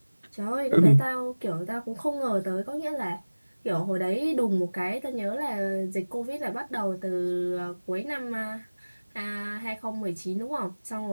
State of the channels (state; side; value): inverted; both; correlation -1.00